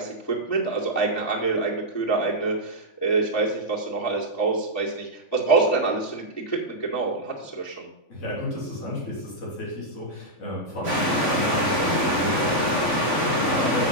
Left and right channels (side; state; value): right; late; 3.5 ms